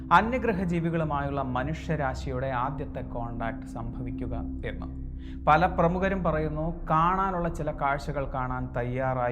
അന്യഗ്രഹ ജീവികളുമായുള്ള മനുഷ്യരാശിയുടെ ആദ്യത്തെ കോണ്ടാക്ട് സംഭവിക്കുക എന്ന്. പല പ്രമുഖരും പറയുന്നു കാണാനുള്ള ചില കാഴ്ചകൾ കാണാൻ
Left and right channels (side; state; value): both; identical; correlation 1.00